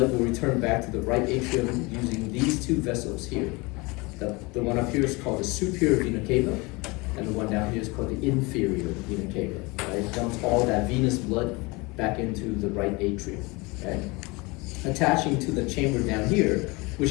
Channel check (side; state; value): right; quieter; 25.6 dB